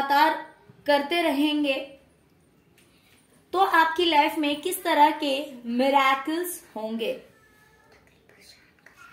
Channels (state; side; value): identical; both; correlation 1.00